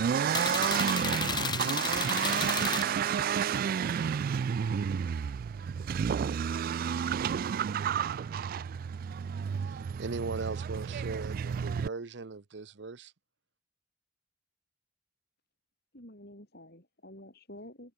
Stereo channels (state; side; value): quieter; left; 5.3 dB